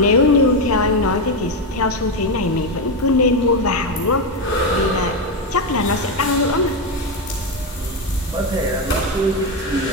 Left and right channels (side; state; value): both; normal; correlation 0.09